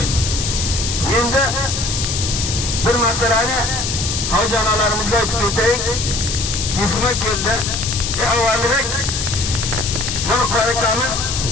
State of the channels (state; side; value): noise; left; hiss, 3 dB below the sound